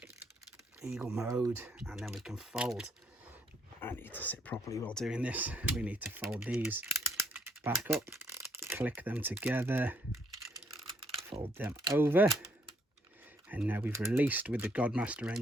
eagle mode, and then we can fold. I need to sit properly while doing this. We need to fold these back up, click them together, fold them over, and now we've released with the Godmaster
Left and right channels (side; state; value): both; normal; correlation 0.69